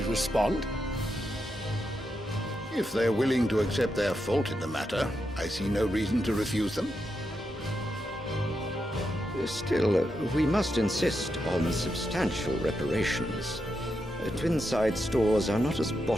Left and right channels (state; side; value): normal; both; correlation 0.85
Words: respond? If they're willing to accept their fault in the matter, I see no reason to refuse them. Still, we must insist on substantial reparations. Twinside stores are not as